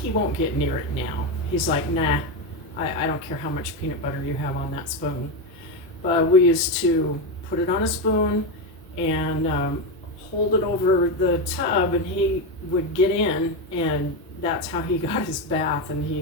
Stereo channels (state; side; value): normal; both; correlation 0.11